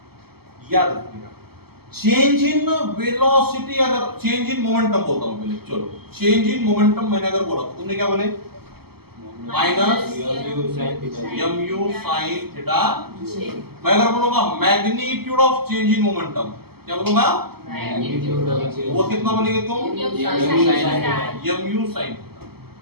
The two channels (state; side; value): late; left; 0.96 ms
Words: याद रखिएगा। चेंज इन वेलोसिटी, अगर चेंज इन मोमेंटम बोलता हूं पहले, चलो चेंज इन मोमेंटम मैंने अगर बोला तो तुमने क्या बोले? Minus mu sin theta. मैं अगर बोलूंगा magnitude of change in momentum, क्या बोलूंगा? वो कितना बोलेंगे तुम? mu sin थीटा,